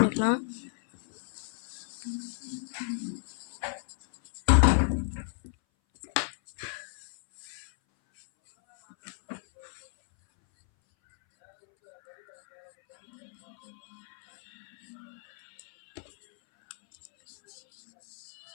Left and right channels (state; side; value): silent; right; 56 dB below the other